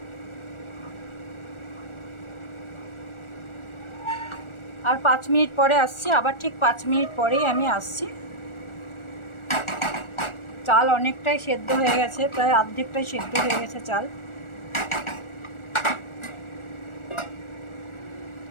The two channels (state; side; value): late; right; 1.4 ms